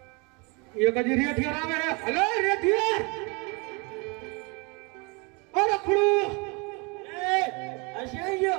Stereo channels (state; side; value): quieter; left; 30.1 dB